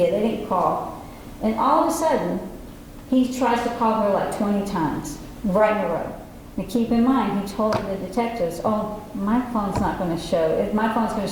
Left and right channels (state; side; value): identical; both; correlation 1.00